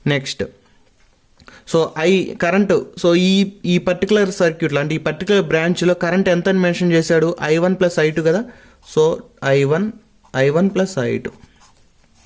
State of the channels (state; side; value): identical; both; correlation 1.00